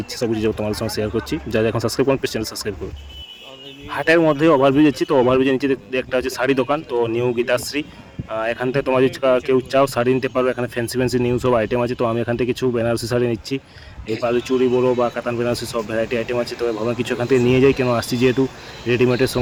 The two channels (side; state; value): both; identical; correlation 1.00